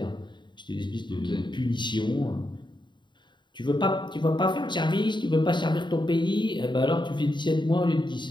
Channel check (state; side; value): late; right; 0.22 ms